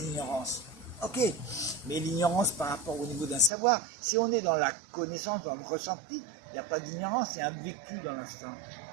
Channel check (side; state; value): left; drops out; at 3.5 s